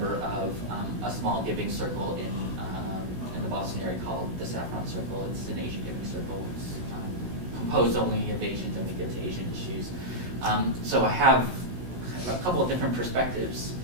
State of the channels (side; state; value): left; late; 16 ms